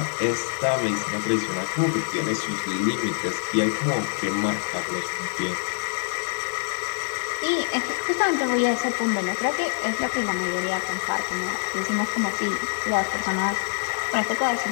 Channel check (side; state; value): right; silent; digital silence